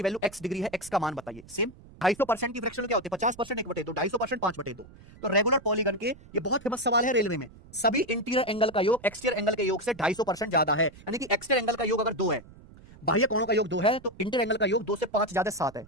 वैल्यू x डिग्री है, x का मान बताइए। सेम 250% की फ्रैक्शन क्या होती है, 50% 1/2, 250% 5/2। तो रेगुलर पॉलीगन के ये बहुत फेमस सवाल है रेलवे में, सभी इंटीरियर एंगल का योग एक्सटीरियर एंगल के योग से 250% ज्यादा है। यानी कि एक्सटीरियर एंगल का योग अगर 2 है, बाह्य कोणों का योग 2 है, तो इंटीरियर एंगल का योग 2 से 5 ज्यादा 7 है।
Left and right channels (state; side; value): noise; right; rumble, 21 dB below the sound